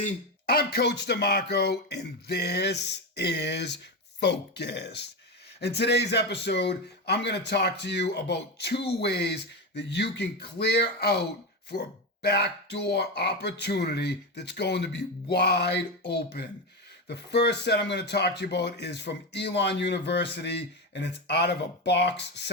I'm Coach DeMarco, and this is Focused. In today's episode, I'm going to talk to you about 2 ways that you can clear out for a backdoor opportunity that's going to be wide open. The first set I'm going to talk to you about is from Elon University, and it's out of a box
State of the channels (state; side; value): normal; both; correlation 0.15